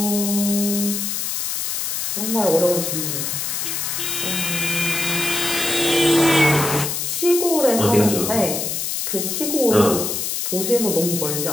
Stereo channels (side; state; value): left; noise; hiss, 2 dB below the sound